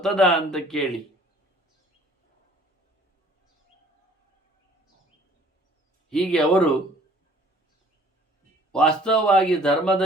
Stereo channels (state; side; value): normal; both; correlation 0.54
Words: ಅಂತ ಕೇಳಿ. ಹೀಗೆ ಅವರು ವಾಸ್ತವವಾಗಿ